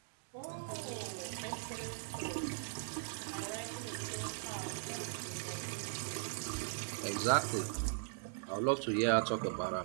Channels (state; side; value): silent; left; digital silence